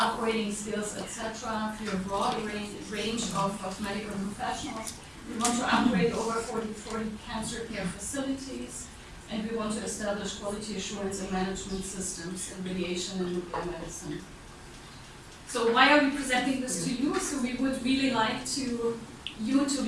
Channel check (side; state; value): both; identical; correlation 1.00